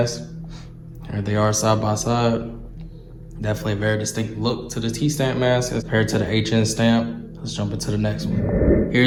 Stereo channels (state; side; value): identical; both; correlation 1.00